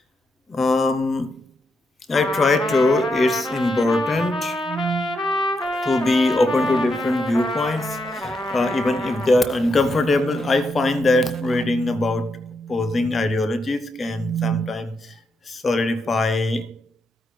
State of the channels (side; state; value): both; normal; correlation 0.82